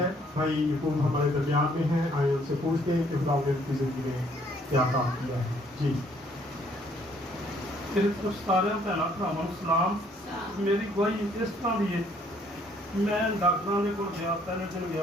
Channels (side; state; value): both; normal; correlation 0.64